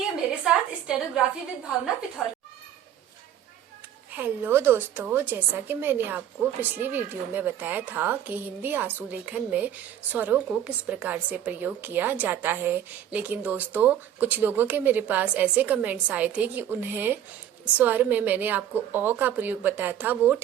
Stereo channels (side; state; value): left; quieter; 10.5 dB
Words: मेरे साथ स्टेनोग्राफी विद भावना पिथौर। हेलो दोस्तों, जैसा कि मैंने आपको पिछली वीडियो में बताया था कि हिंदी आंसू लेखन में स्वरों को किस प्रकार से प्रयोग किया जाता है, लेकिन दोस्तों कुछ लोगों के मेरे पास ऐसे कमेंट्स आए थे कि उन्हें स्वर में मैंने आपको अ का प्रयोग बताया था वो